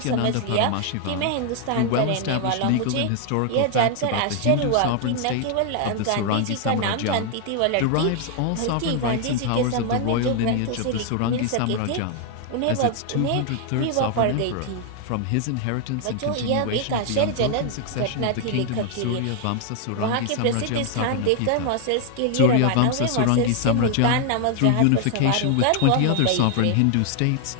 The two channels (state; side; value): different; both; correlation 0.00